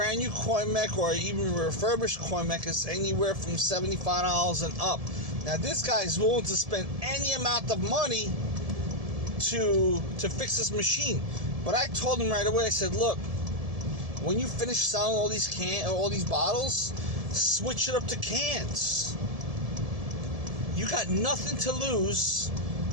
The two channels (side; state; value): left; late; 1.7 ms